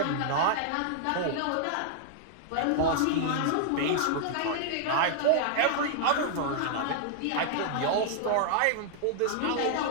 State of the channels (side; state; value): both; different; correlation -0.01